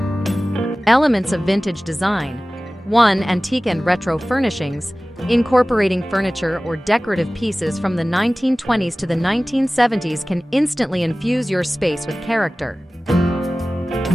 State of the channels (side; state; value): both; normal; correlation 0.97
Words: Elements of vintage design. 1. Antique and retro furnishings. Incorporating furniture or decorative pieces from the 1920s to the 1970s can instantly infuse your space with character.